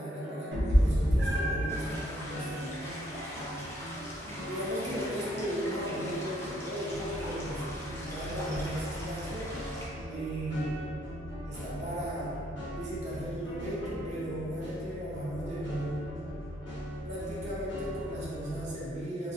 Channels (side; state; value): both; normal; correlation 0.70